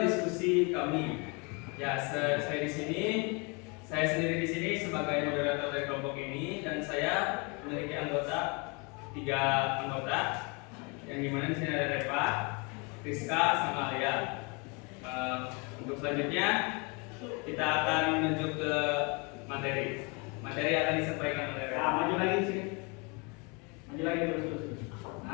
diskusi kami. Ya, saya sendiri di sini sebagai moderator dari kelompok ini, dan saya memiliki anggota 3 anggota, yang dimana di sini ada Reva, Rizka, sama Alia. Untuk selanjutnya kita akan menuju ke materi. Materi akan disampaikan oleh Reva. Nah, maju lagi sini. Maju lagi terus.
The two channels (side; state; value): right; quieter; 31.1 dB